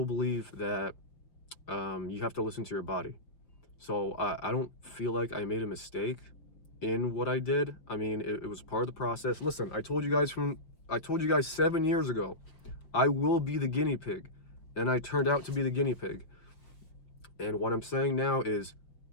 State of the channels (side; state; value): right; late; 5.8 ms